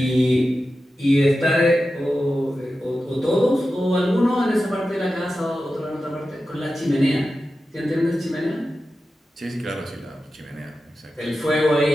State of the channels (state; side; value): normal; both; correlation 0.92